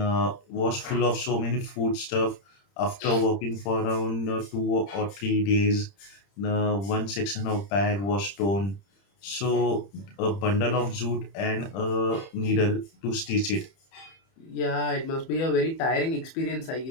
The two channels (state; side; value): late; right; 30 ms